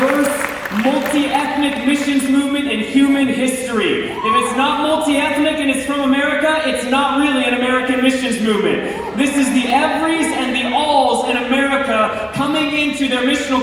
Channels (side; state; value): both; identical; correlation 1.00